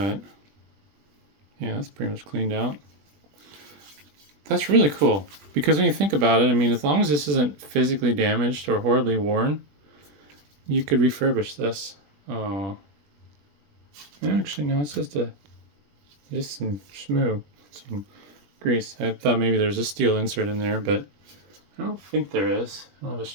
yeah, that's pretty much cleaned out. That's really cool, because when you think about it, I mean, as long as this isn't physically damaged or horribly worn, you could refurbish this. Oh, actually, no, it's just some schmoo, some grease. I thought maybe there's a steel insert in there, but I don't think there is. I don't have a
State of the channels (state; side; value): late; left; 20 ms